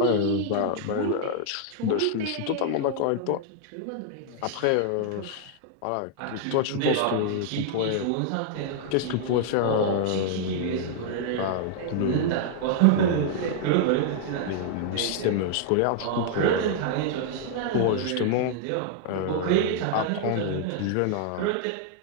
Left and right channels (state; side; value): different; both; correlation -0.01